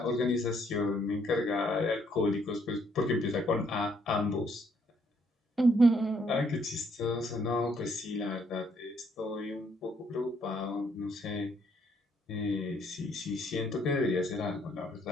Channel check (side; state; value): both; normal; correlation 0.69